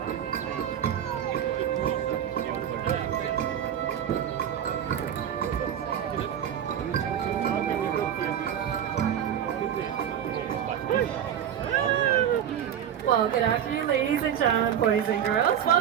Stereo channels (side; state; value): left; quieter; 9.5 dB